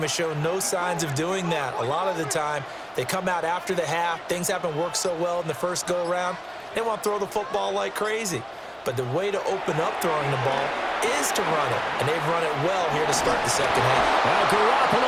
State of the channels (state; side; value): identical; both; correlation 1.00